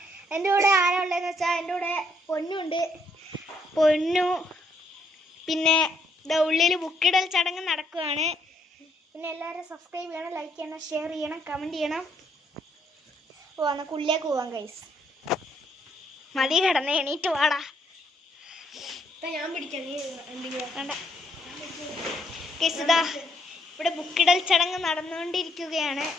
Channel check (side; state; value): both; normal; correlation 0.72